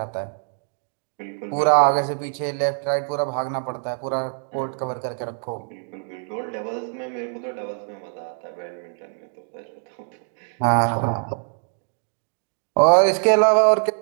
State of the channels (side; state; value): left; silent; 62 dB below the other